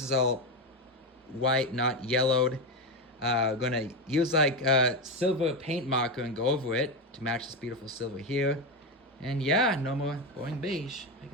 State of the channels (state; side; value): normal; both; correlation 0.13